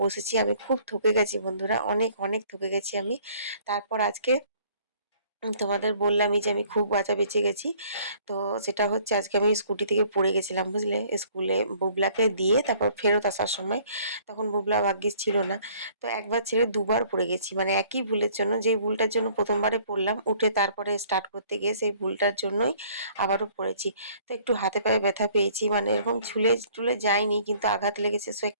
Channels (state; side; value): inverted; both; correlation -0.58